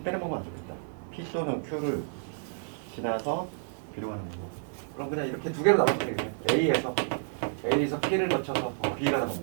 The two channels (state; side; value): silent; left; digital silence